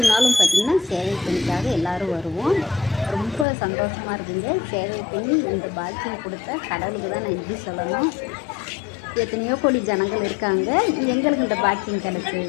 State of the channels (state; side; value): drops out; right; at 3.5 s